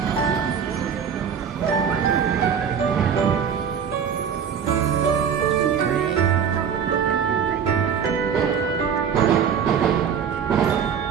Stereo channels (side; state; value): left; quieter; 7.4 dB